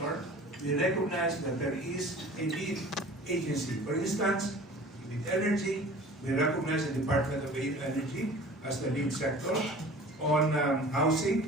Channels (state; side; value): normal; both; correlation 0.43